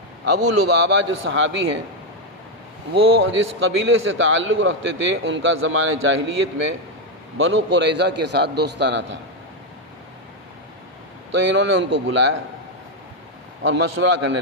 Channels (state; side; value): normal; both; correlation 0.04